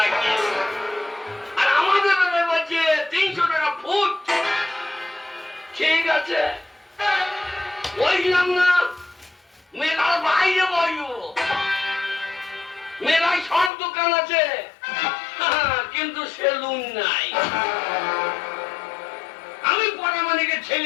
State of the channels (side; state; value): right; drops out; at 13.7 s